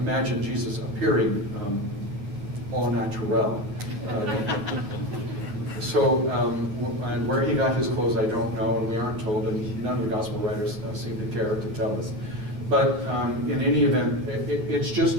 Jesus appearing au naturel. And where he got his clothes, I don't know, and we aren't told, and none of the Gospel writers seem to care to tell us. But in any event, it's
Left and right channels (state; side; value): late; left; 9.7 ms